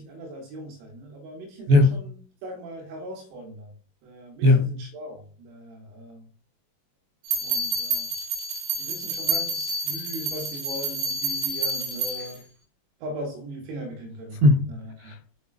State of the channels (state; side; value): late; left; 21 ms